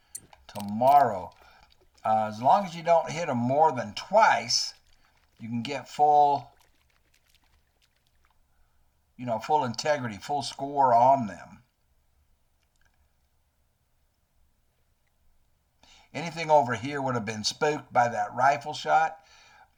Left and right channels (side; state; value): both; identical; correlation 1.00